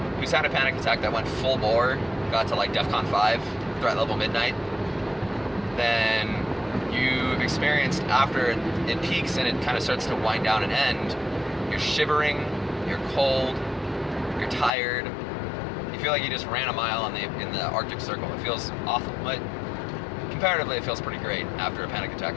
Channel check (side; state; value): right; drops out; at 14.7 s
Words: who's had a panic attack that went full bore, got to like DEFCON 5, threat level midnight, then you've experienced, after it peaks and it kind of starts to wind down and end, you're shivering, you're cold, you're tired, you feel like you just ran a mile in the Arctic Circle. It feels awful, but comparatively it feels pretty great after a panic attack,